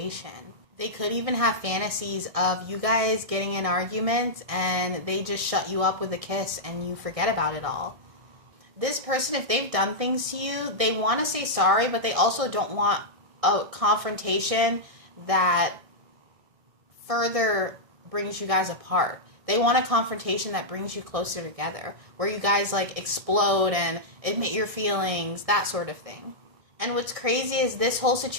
They could even have fantasies of you guys getting in arguments and they just shut you up with a kiss and you forget about it all. This person, if they've done things to you, they want to say sorry, but they also don't want a confrontation that further brings you guys apart. They want a confrontation that brings you closer together, where you guys like explode and admit your feelings, that sort of thing. And what's crazy is this whole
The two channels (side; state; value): left; late; 1.6 ms